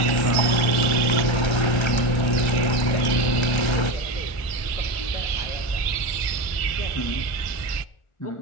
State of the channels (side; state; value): right; late; 1.4 ms